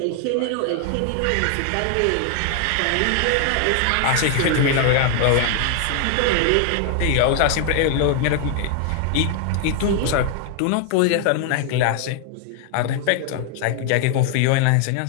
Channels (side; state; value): both; different; correlation 0.00